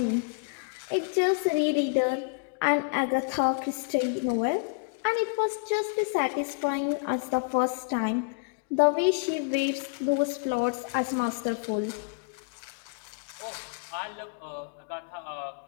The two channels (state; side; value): quieter; right; 35.5 dB